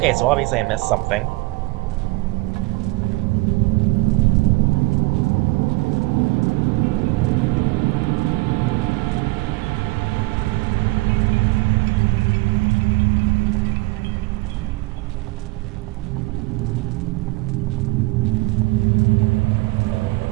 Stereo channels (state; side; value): quieter; left; 22.6 dB